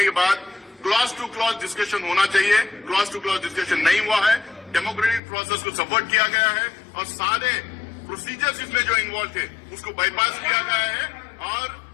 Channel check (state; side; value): drops out; right; at 5.2 s